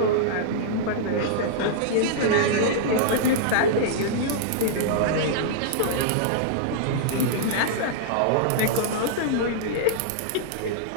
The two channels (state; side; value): different; both; correlation -0.02